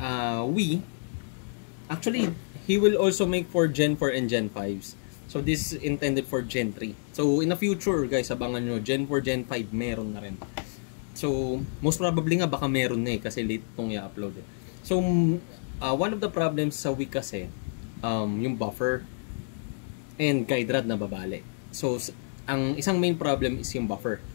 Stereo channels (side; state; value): right; silent; digital silence